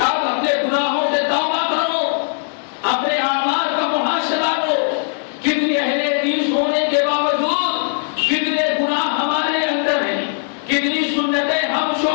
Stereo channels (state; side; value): silent; right; digital silence